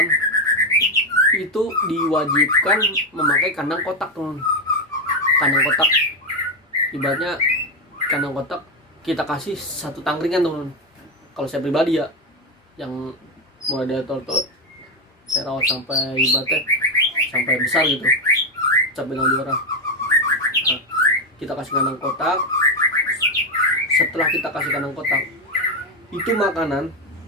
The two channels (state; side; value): normal; both; correlation 0.09